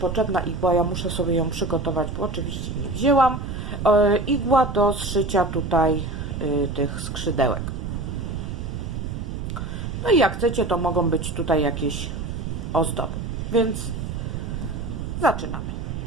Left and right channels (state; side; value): noise; right; rumble, 5 dB below the sound